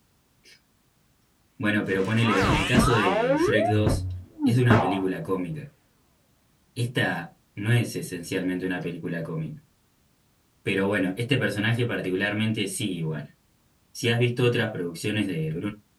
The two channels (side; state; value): both; identical; correlation 1.00